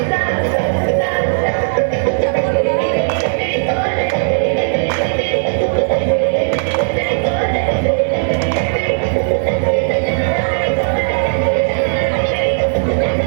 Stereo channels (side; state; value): left; silent; digital silence